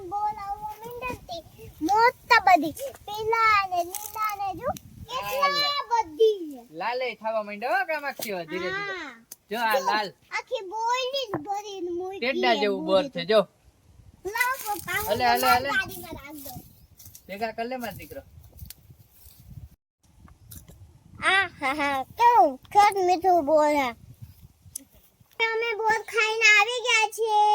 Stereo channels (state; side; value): identical; both; correlation 1.00